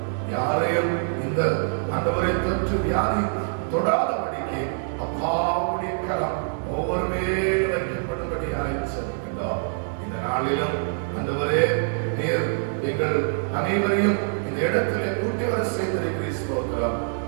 யாரையும் இந்த ஆண்டவரை தொற்று வியாதி தொடாதபடிக்கு அப்பாவுடைய கரம் ஒவ்வொரு மேலும் வைக்கப்படும்படியாக செல்கின்றோம். இந்த நாளிலும் ஆண்டவரே, நீர் எங்கள் அனைவரையும் இந்த இடத்திலே கூட்டி வர செய்திருக்கிறோம்.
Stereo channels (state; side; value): silent; left; 62 dB below the other